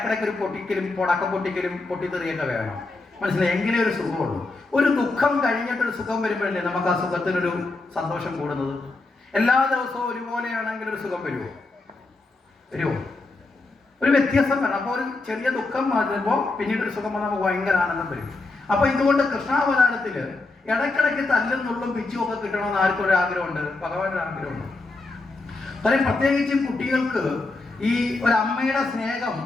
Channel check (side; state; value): right; quieter; 3.3 dB